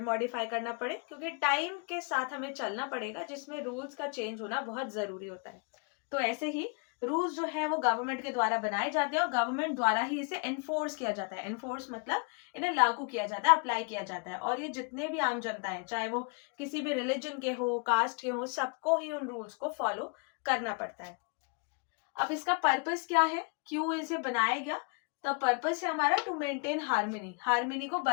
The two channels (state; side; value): quieter; right; 36.0 dB